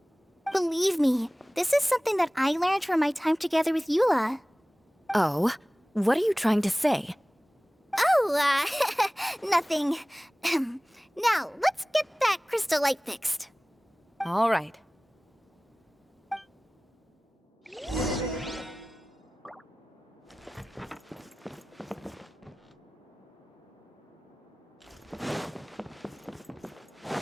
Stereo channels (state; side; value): normal; both; correlation 0.98